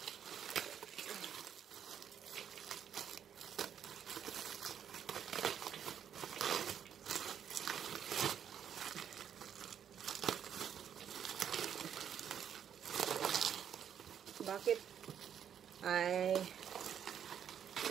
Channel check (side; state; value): left; quieter; 8.8 dB